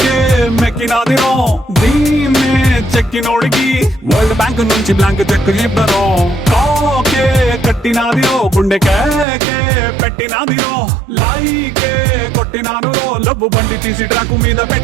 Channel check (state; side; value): drops out; left; at 9.2 s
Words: మెక్కినాదిరో దీన్నే చెక్కినోడికి వరల్డ్ బ్యాంక్ నుంచి బ్లాంక్ చెక్ ఇవ్వరో కాకే కట్టినాదిరో గుండె కేకే పెట్టినాదిరో లైకే కొట్టినాను లవ్వు బండి తీసి ట్రాక్ మీద